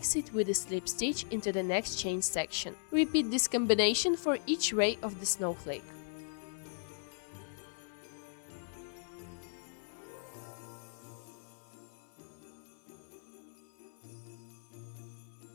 it with a slip stitch into the next chain section. Repeat this combination for each ray of the snowflake.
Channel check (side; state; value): right; silent; 53 dB below the other